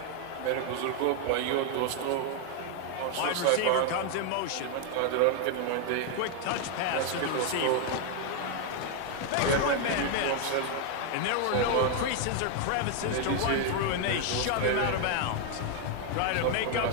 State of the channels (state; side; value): different; both; correlation 0.01